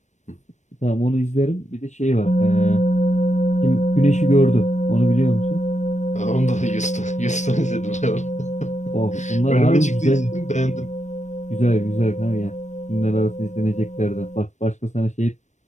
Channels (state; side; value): late; right; 0.34 ms